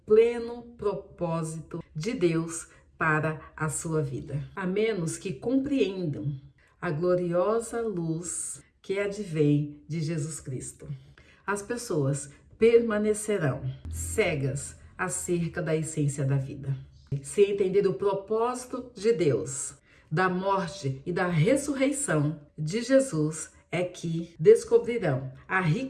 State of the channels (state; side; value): identical; both; correlation 1.00